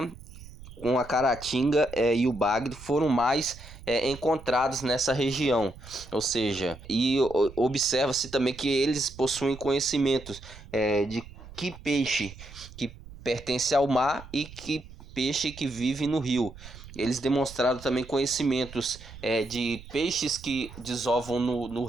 com a caratinga e o bagre foram mais encontrados nessa região, ou seja, e observa-se também que eles possuem conhecimentos de que peixe que pertence ao mar e que peixe que vive no rio. Eles demonstraram também conhecimentos de peixes que desovam no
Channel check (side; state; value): right; noise; rumble, 17 dB below the sound